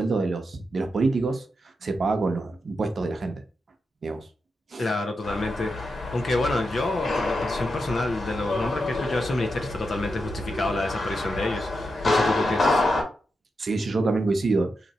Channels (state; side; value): normal; both; correlation 0.87